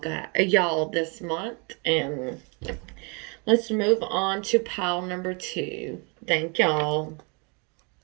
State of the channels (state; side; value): quieter; left; 32.9 dB